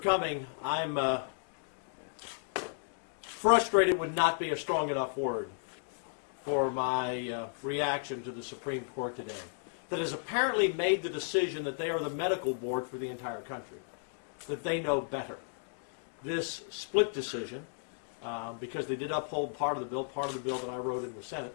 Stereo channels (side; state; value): right; silent; digital silence